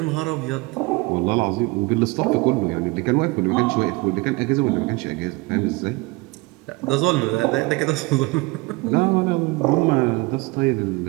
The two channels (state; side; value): quieter; left; 24.4 dB